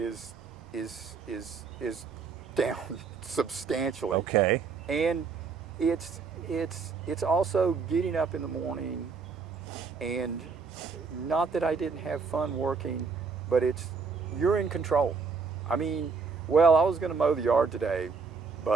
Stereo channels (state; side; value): quieter; left; 5.1 dB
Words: down substantially. Okay. And it's also getting up in the morning, and not that I didn't have fun working, but you're in control. I mean, I was going to mow the yard today,